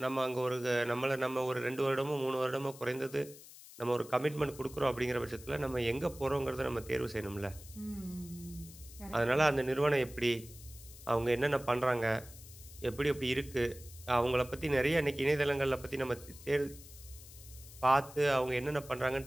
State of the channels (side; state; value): left; noise; hiss, 18 dB below the sound